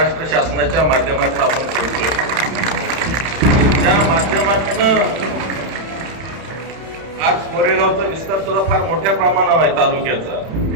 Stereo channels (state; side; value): late; left; 31 ms